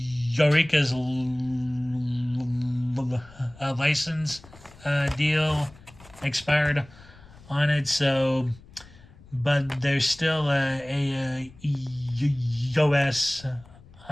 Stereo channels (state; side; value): noise; left; rumble, 23 dB below the sound